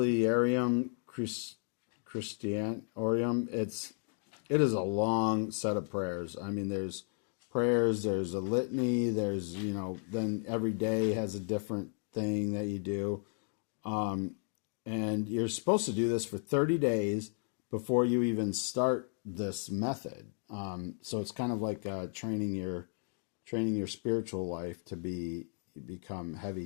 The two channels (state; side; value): silent; right; 55 dB below the other